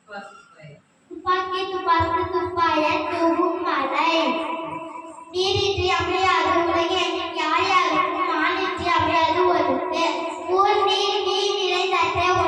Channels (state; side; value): identical; both; correlation 1.00